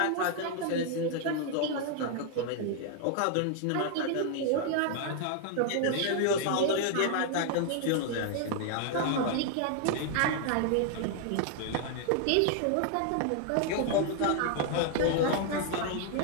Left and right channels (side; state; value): both; different; correlation 0.00